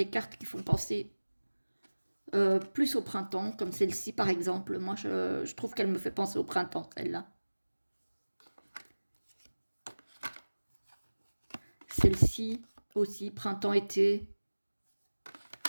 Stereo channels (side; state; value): both; inverted; correlation -1.00